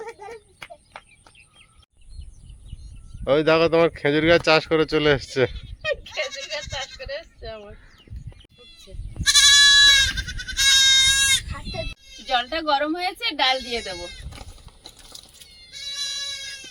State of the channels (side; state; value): both; identical; correlation 1.00